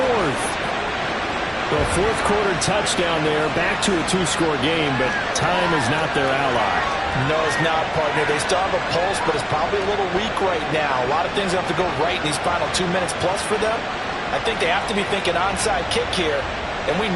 The 4th quarter touchdown there, back to a 2-score game, but time is not their ally. No, it's not, partner. They still have a pulse, but it's probably a little weak right now. A lot of things have to go right in these final 2 minutes plus for them. I think they have to be thinking onside kick here, and we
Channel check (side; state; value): both; identical; correlation 1.00